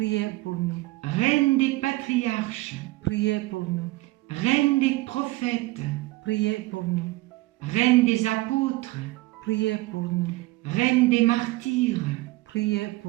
pour nous. reine des patriarches, Priez pour nous. reine des prophètes, Priez pour nous. reine des apôtres, Priez pour nous. reine des martyrs, Priez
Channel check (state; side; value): quieter; left; 20.1 dB